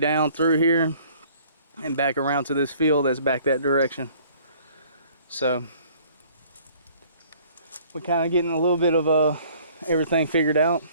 through here and back around to this field that's back that direction. So we're kind of getting a little bit of everything figured out.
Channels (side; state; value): both; inverted; correlation -0.55